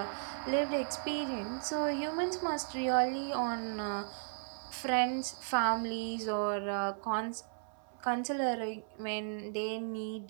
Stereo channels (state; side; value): silent; left; 54 dB below the other